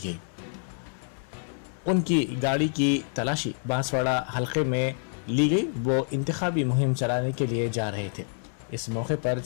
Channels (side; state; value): right; silent; 60 dB below the other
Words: उनकी गाड़ी की तलाशी बांसवाड़ा हलके में ली गई। वो इंतखाबी मुहिम चलाने के लिए जा रहे थे। इस मौके पर